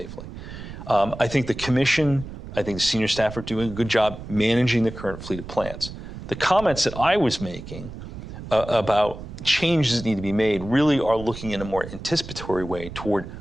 I think the commission, I think the senior staff are doing a good job managing the current fleet of plants. The comments that I was making about changes that need to be made really are looking in a more anticipatory way toward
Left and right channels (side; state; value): right; noise; rumble, 11 dB below the sound